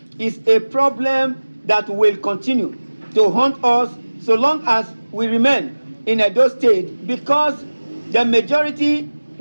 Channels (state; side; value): inverted; both; correlation -1.00